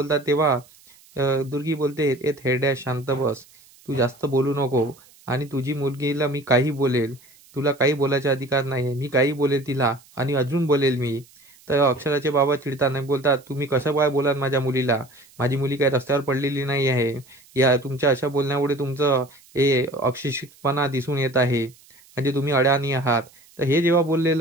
तेव्हा दुर्गी बोलते, ए थेरड्या शांत बस, तू जास्त बोलू नको आणि तुझी मुलगीला मी काही बोलेल, तुला काही बोलायचा अधिकार नाही. मी काही बोलेल तिला आणि अजून बोलेल मी. तर अक्षराचे बाबा चिडताना बोलतात, तुम्ही कसं काय बोलाल माझ्या मुलीला? माझी मुली काही रस्त्यावर पडलेली नाही आहे. या तुमच्या अशा बोलण्यामुळे तुमचं हे अशिक्षितपणा दिसून येत आहे, म्हणजे तुम्ही अडाणी आहात. तर हे जेव्हा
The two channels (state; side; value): noise; right; hiss, 27 dB below the sound